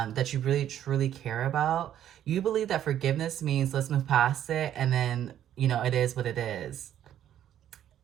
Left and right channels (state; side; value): quieter; left; 10.9 dB